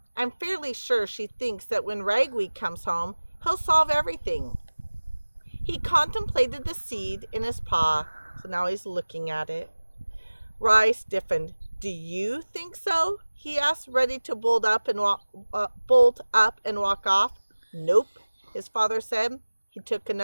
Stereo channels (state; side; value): inverted; both; correlation -1.00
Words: I'm fairly sure she thinks that when Ragweed comes home, he'll solve everything. He contemplated the seed in his paw, so now he's looking at it. Rai stiffened. Do you think so? He asked, ready to bolt up and walk off. Nope, his father said. He took